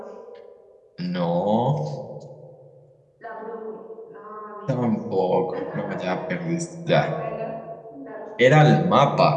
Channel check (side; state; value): both; identical; correlation 1.00